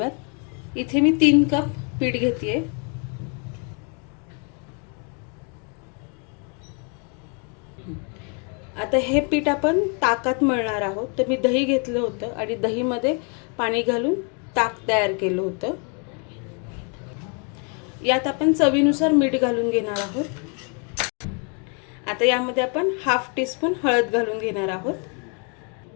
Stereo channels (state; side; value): quieter; right; 37.7 dB